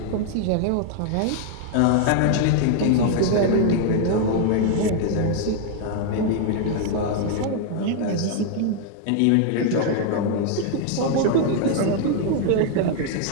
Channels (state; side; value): different; both; correlation 0.00